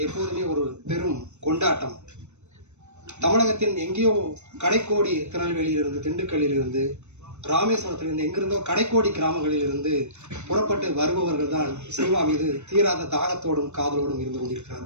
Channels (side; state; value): left; late; 0.82 ms